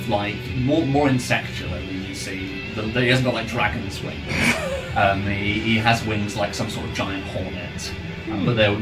like more insectual than you see. He hasn't got like dragon's wings. He has wings like some sort of giant hornet. but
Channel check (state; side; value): identical; both; correlation 1.00